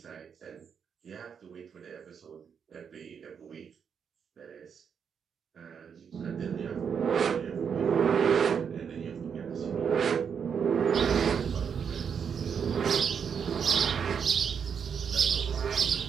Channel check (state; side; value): quieter; left; 7.0 dB